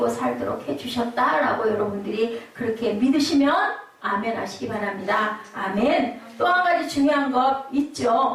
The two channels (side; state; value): both; identical; correlation 1.00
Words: 살도록 해주셨다라고 여러분들이 그렇게 믿으시면 아멘 하시기 바랍니다. 아멘. 또 한 가지 중요한 것